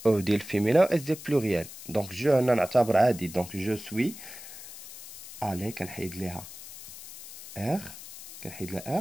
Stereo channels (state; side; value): noise; left; hiss, 15 dB below the sound